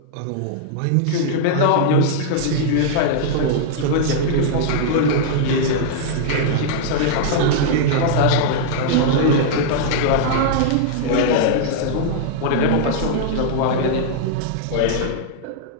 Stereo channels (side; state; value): both; different; correlation -0.01